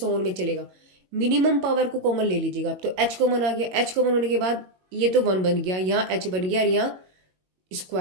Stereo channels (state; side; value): late; left; 22 ms